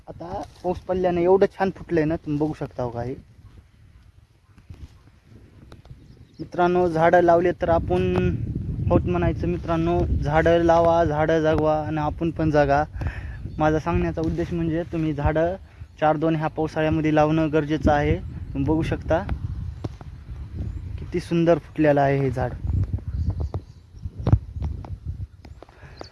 आता पाऊस पडल्याने एवढं छान फुटलंय ना, तुम्ही बघू शकता. हो का, हे मित्रांनो, झाडं लावले तर आपण होत म्हणायचं. मित्रांनो, झाडं लावा, झाडं जगवा आणि आपण पण जगा. माझा सांगण्याचा उद्देश म्हणजे तुम्ही झाडं 4-2 ह्या पावसाळ्यामध्ये लावणं गरजेचं आहे. तुम्ही बघू शकता किती सुंदर फुटलेलं आहे हे झाड.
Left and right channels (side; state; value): both; identical; correlation 1.00